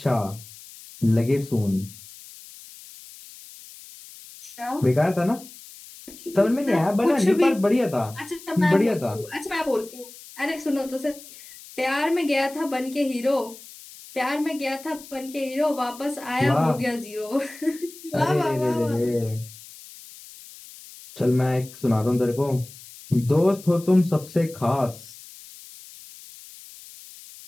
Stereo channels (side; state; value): left; noise; hiss, 18 dB below the sound